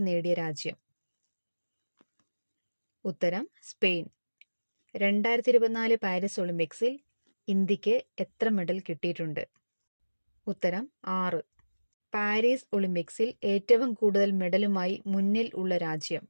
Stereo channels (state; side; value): inverted; both; correlation -1.00